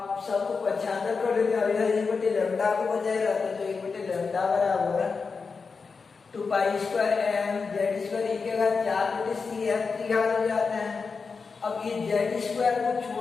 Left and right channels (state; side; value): quieter; right; 4.9 dB